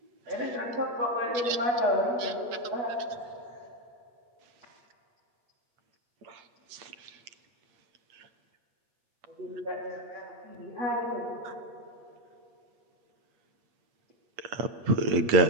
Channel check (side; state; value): left; late; 8.7 ms